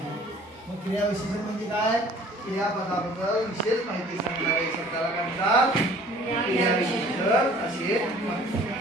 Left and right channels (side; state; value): both; normal; correlation 0.52